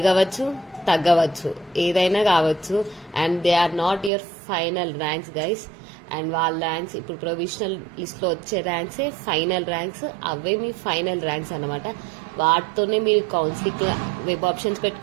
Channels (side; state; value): left; drops out; at 4.1 s